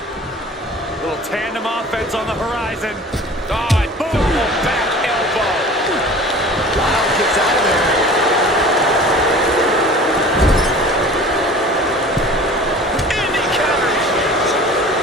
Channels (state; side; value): normal; both; correlation 0.43